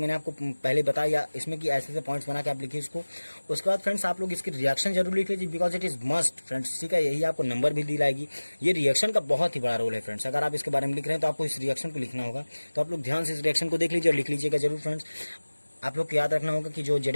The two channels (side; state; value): both; inverted; correlation -1.00